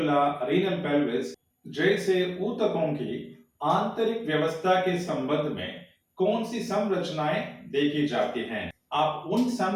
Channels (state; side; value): identical; both; correlation 1.00